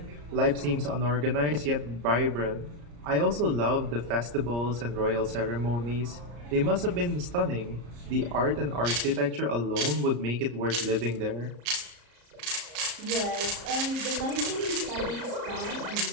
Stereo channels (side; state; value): left; late; 34 ms